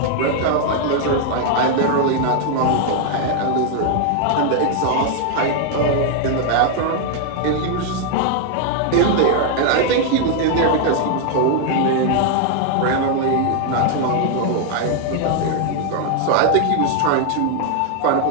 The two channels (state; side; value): different; both; correlation 0.00